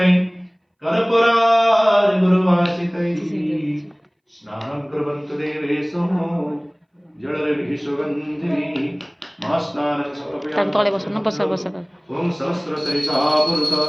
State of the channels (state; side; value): identical; both; correlation 1.00